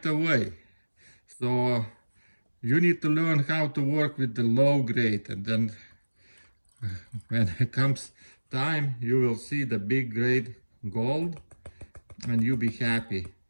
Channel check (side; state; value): both; inverted; correlation -1.00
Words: away. So you need to learn how to work with the low grade, and then when it comes time, you will see the big grade gold and you'll be happy.